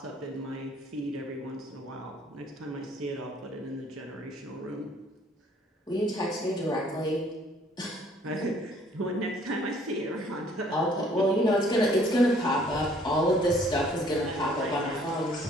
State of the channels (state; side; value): normal; both; correlation 0.59